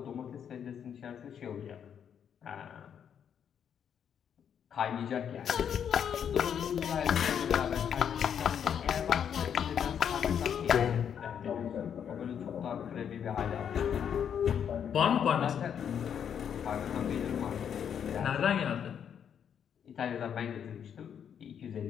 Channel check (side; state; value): right; quieter; 8.3 dB